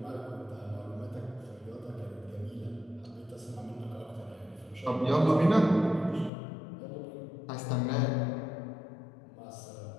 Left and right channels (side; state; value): right; drops out; at 6.3 s